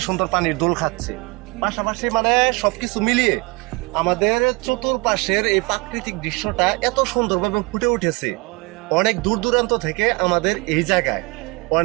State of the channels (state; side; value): quieter; left; 26.9 dB